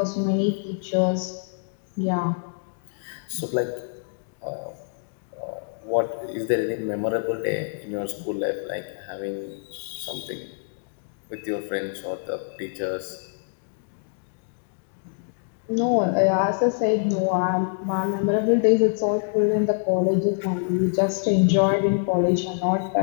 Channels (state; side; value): silent; right; digital silence